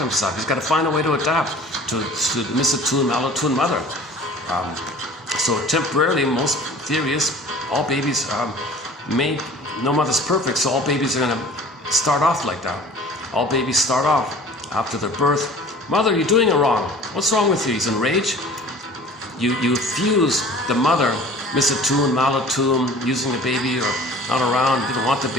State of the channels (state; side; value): normal; both; correlation 0.45